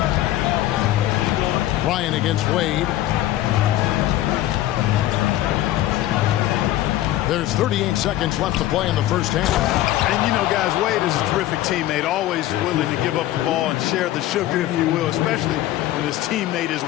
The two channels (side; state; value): right; quieter; 14.4 dB